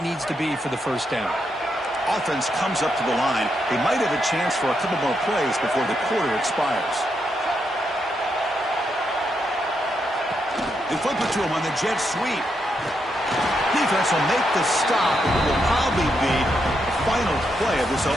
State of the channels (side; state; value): both; normal; correlation 0.81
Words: needs to be for the 1st down. Offense comes up to the line. They might have a chance for a couple more plays before the quarter expires. They flip it to him on the jet sweep. Defense will make the stop. It will probably be the final play of this